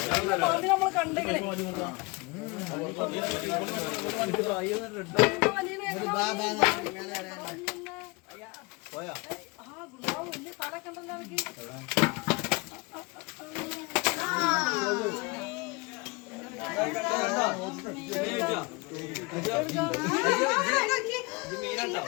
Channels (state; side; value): quieter; right; 26.7 dB